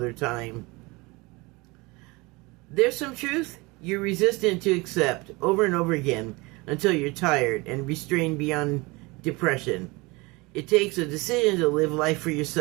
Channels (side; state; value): left; quieter; 24.6 dB